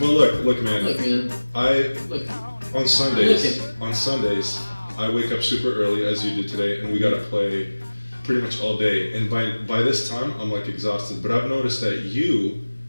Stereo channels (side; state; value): both; inverted; correlation -1.00